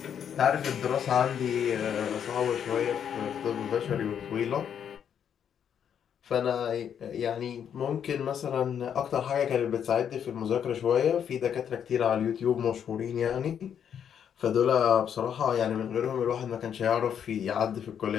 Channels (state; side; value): quieter; right; 8.5 dB